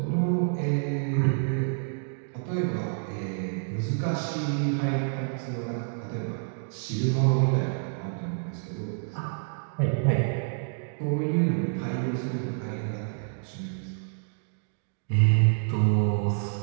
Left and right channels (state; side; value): silent; left; digital silence